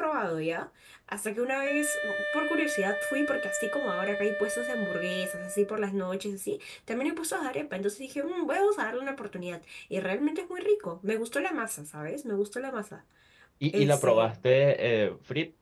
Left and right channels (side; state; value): both; identical; correlation 1.00